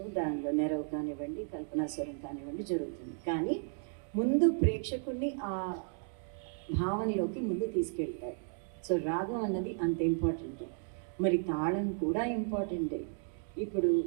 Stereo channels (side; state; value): left; silent; 55 dB below the other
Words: దానిలో నెరవు కానివ్వండి, కల్పనాస్వరం కానివ్వండి జరుగుతుంది. కానీ ముందు ప్రేక్షకుల్ని ఆ భావనలోకి ముందు తీసుకెళ్తారు. సో రాగం అన్నది అంత ఇంపార్టెంట్. మరి తాళం కూడా ఇంపార్టెంటే. ఇప్పుడు